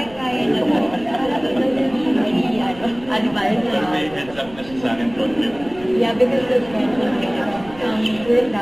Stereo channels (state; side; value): noise; right; rumble, 19 dB below the sound